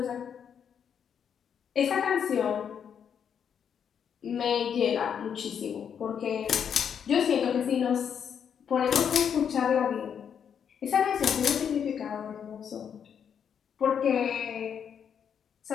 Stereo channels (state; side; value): quieter; right; 7.8 dB